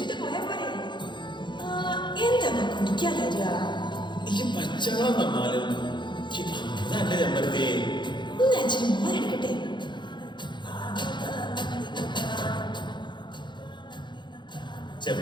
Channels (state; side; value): late; right; 0.22 ms